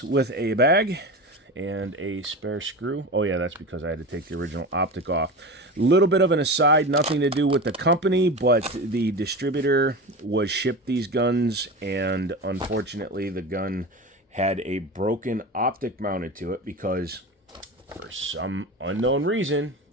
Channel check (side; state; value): both; normal; correlation 0.28